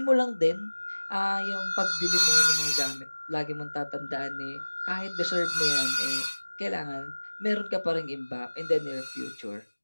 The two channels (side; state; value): both; inverted; correlation -1.00